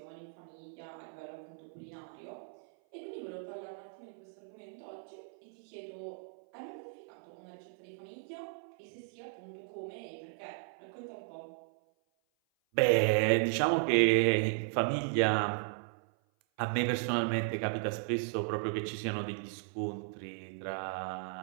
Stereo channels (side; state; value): left; silent; 54 dB below the other